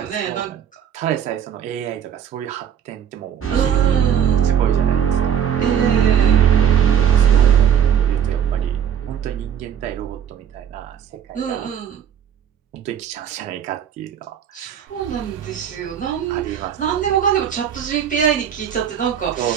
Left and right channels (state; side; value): quieter; left; 8.9 dB